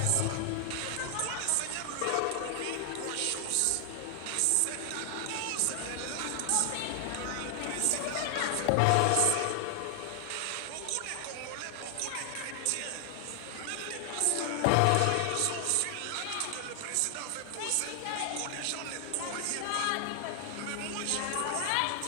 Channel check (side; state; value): both; different; correlation 0.00